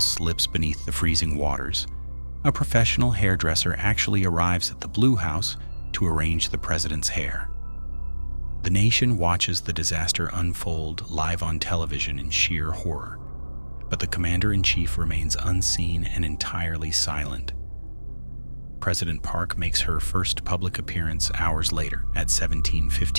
beneath the freezing waters, a professional hairdresser actually arrives at the Blue House to arrange the president's hair. The nation watches the disaster unfold live on television in sheer horror, but the commander-in-chief remains unseen and entirely silent. President Park makes her first public appearance hours later at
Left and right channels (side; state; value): both; inverted; correlation -1.00